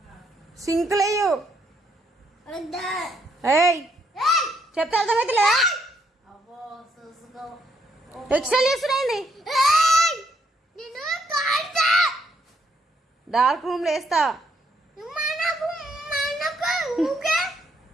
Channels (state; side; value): normal; both; correlation 0.73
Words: సింకులేయు. ఏయ్ చెప్తే అర్థమైతే ఎక్స్ట్రా చేస్తున్నాయండి. డార్క్ రూమ్ లో వేస్తా.